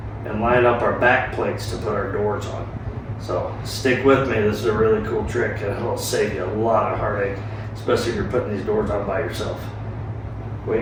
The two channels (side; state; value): both; identical; correlation 1.00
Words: and line up our back plates to put our doors on. So stick with me, this is a really cool trick and it'll save you a lot of heartache, especially if you're putting these doors on by yourself. Wait